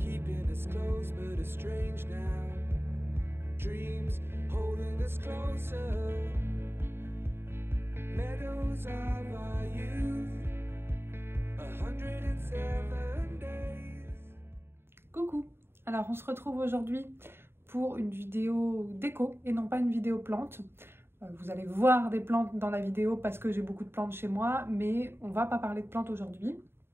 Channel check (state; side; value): late; left; 0.11 ms